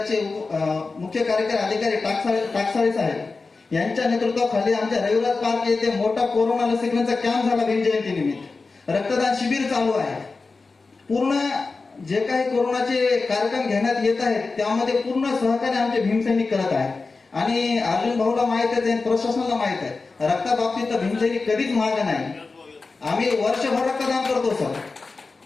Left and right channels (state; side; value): quieter; right; 4.0 dB